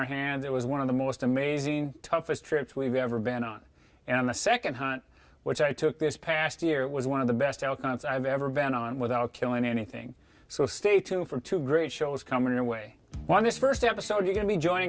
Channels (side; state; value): both; identical; correlation 1.00